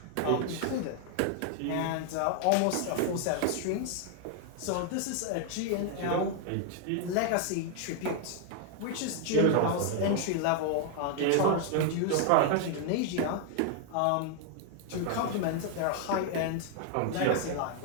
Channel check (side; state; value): both; different; correlation 0.00